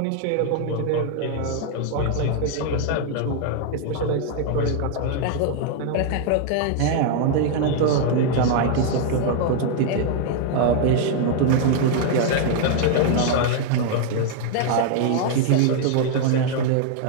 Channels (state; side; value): different; both; correlation 0.00